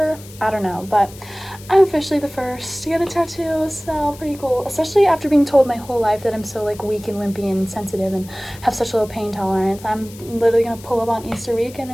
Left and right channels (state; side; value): noise; left; hiss, 19 dB below the sound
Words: I don't know, but I'm officially the first to get a tattoo, so pretty cool, especially after being told my whole life that I'm so like weak and wimpy and sensitive and have such low pain tolerance. I'm literally gonna pull up on Easter weekend